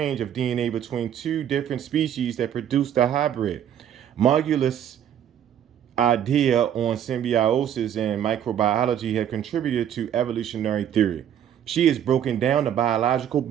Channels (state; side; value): quieter; left; 9.8 dB